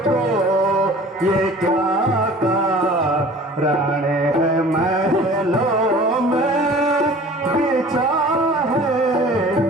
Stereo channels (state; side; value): normal; both; correlation 0.45